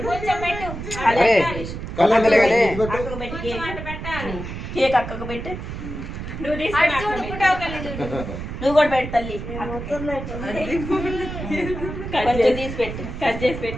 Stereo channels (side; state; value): right; noise; rumble, 8 dB below the sound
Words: పెట్టి కేక్ అక్కకు పెట్టు నువ్వు కూడా పెట్టు తల్లి కొంచెం తీసి పెట్టు కట్ చేసి